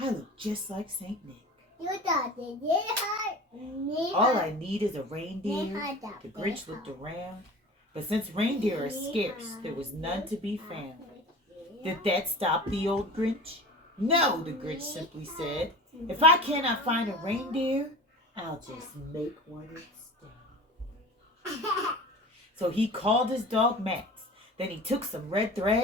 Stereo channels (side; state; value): both; normal; correlation 0.37